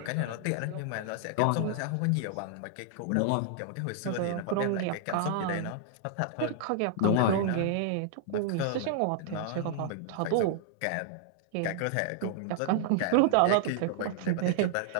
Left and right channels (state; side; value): different; both; correlation -0.01